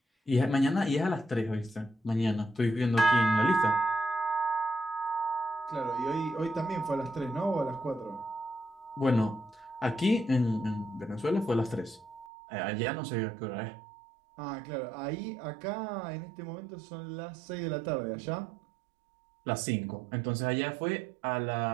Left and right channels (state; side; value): drops out; left; at 12.3 s